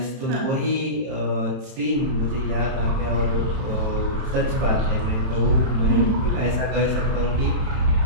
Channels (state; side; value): late; left; 31 ms